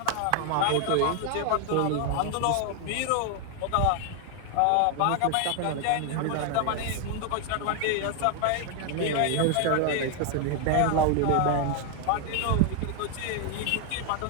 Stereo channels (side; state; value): both; different; correlation 0.00